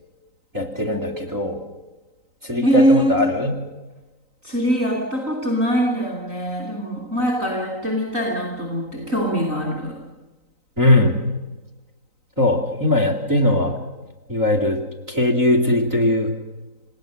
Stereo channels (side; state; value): left; late; 3.9 ms